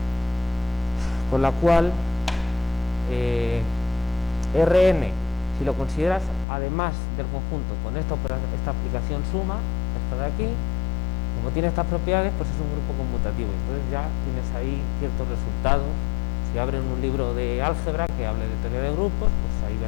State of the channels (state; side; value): drops out; right; at 6.5 s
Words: con la cual Rn, si lo consideras además del conjunto con esta aplicación suma, esta de aquí, como tiene estas propiedades, pues es un grupo conmutativo. Entonces ya tienes ahí ciertos resultados. Si abren un libro de álgebra que hable de teoría de grupos, pues ahí